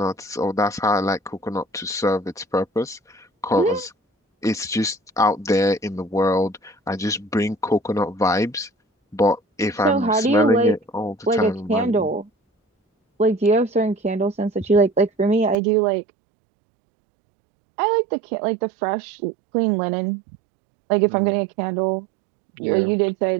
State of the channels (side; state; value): left; drops out; at 15.6 s